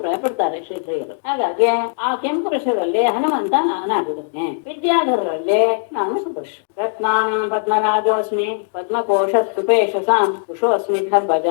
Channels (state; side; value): silent; right; digital silence